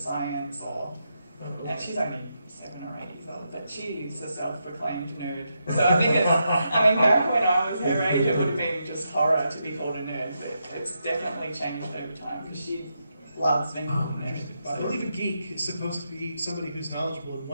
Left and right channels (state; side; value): inverted; both; correlation -0.83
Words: and she's only 7 or 8 years old, but she's a self-proclaimed nerd. So I think back when I was her age, it would have been just horror to be called a nerd, but it's definitely changed over time because she loves being called a nerd. I believe a geek is supposed to be somebody who's knowledgeable in